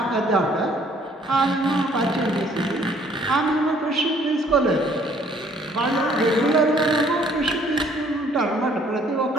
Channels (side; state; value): both; normal; correlation 0.60